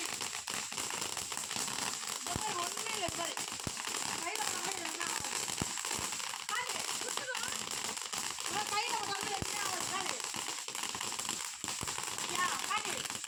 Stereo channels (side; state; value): both; identical; correlation 1.00